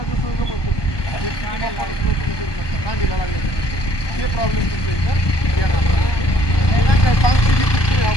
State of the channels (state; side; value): late; right; 1.2 ms